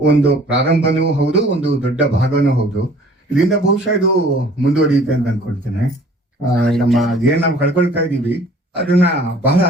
ಒಂದು ಪ್ರಾರಂಭನೂ ಹೌದು, ಒಂದು ದೊಡ್ಡ ಭಾಗನೂ ಹೌದು. ಇದರಿಂದ ಬಹುಶಃ ಇದು ಮುಂದುವರಿಯುತ್ತೆ ಅಂತ ಅನ್ಕೊಳ್ತೇನೆ. ನಮ್ಮ ಏನ್ ನಾವು ಕಳ್ಕೊಳ್ತಾ ಇದೀವಿ ಅದನ್ನ ಬಹಳ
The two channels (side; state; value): both; normal; correlation 0.52